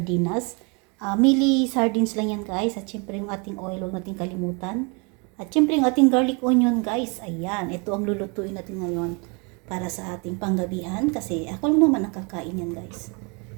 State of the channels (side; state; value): left; quieter; 32.3 dB